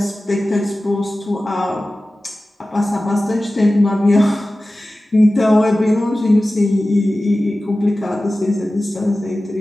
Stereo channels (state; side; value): normal; both; correlation 0.96